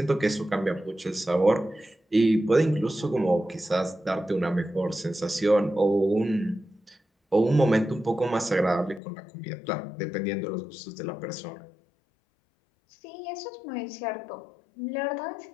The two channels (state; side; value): drops out; right; at 9.0 s